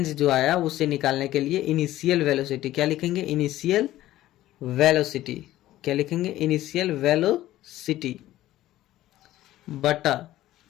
जो आया उससे निकालने के लिए इनिशियल वेलोसिटी क्या लिखेंगे? Initial velocity. क्या लिखेंगे? इनिशियल वेलोसिटी बटा,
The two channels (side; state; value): right; quieter; 14.7 dB